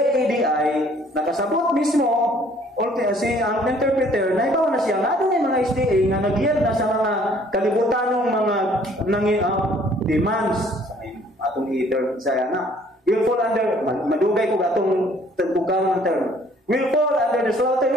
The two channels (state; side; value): normal; both; correlation 0.59